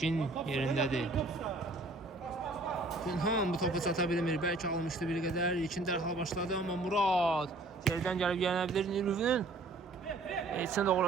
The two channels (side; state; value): left; quieter; 3.0 dB